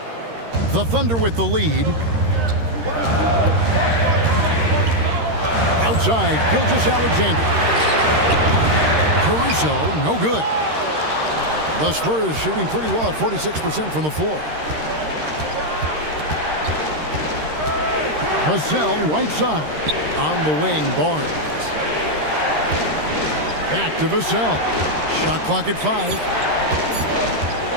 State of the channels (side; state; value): left; late; 13 ms